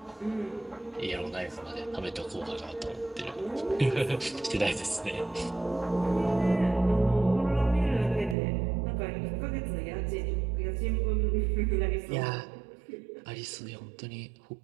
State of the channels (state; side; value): drops out; left; at 8.3 s